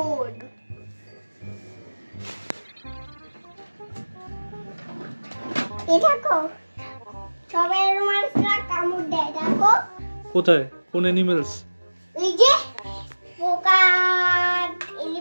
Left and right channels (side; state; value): both; inverted; correlation -1.00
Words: দেখো সবাই মানুষরা কামড় দেয়, দেখো কোথায় কোন অ্যানিমেলস? এই যে পোকা